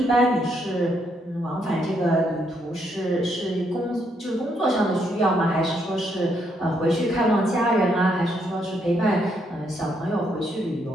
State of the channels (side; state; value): both; normal; correlation 0.75